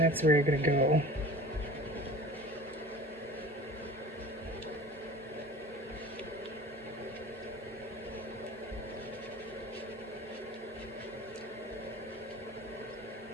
where you're gonna go.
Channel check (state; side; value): normal; both; correlation 0.41